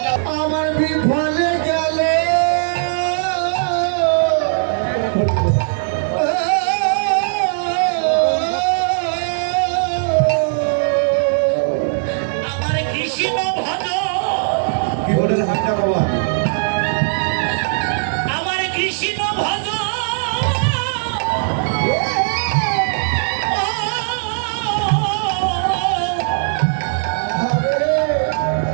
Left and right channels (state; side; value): silent; left; digital silence